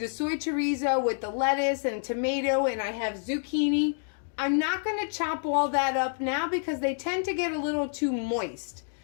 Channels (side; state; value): right; silent; digital silence